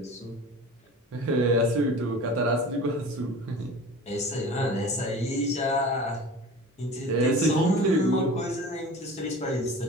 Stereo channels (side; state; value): both; normal; correlation 0.38